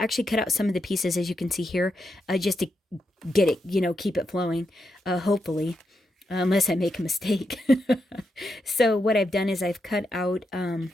cut out some of the pieces, as you can see here, just to get it, keep it flowing, hopefully, unless I make a mistake. So what I've done is I've cut out,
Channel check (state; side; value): normal; both; correlation 0.84